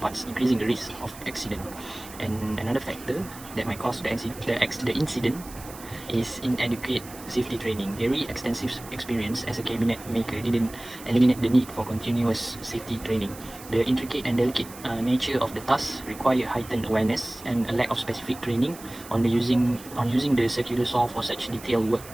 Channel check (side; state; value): right; noise; hiss, 17 dB below the sound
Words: increasing the risk of accident. And another factor that might cause the incident is inadequate safety training. Very extensive experience as a cabinet maker didn't eliminate the need for continuous safety training. The intricate and delicate nature of the task require heightened awareness, and a lack of specific training on using the circular saw for such detailed work